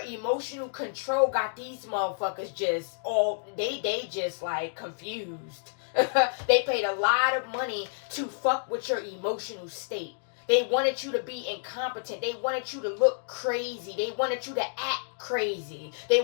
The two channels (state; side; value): silent; right; digital silence